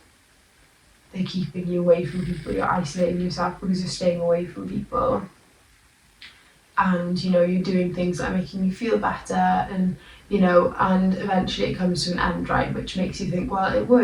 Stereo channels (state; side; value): identical; both; correlation 1.00